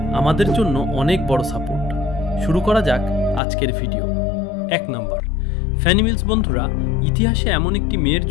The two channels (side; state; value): right; drops out; at 3.4 s